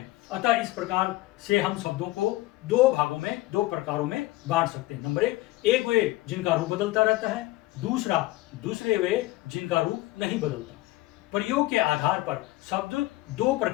अतः इस प्रकार से हम शब्दों को दो भागों में, दो प्रकारों में बांट सकते हैं। नंबर एक वे जिनका रूप बदलता रहता है, दूसरे वे जिनका रूप नहीं बदलता। प्रयोग के आधार पर शब्द दो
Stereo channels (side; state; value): right; quieter; 18.3 dB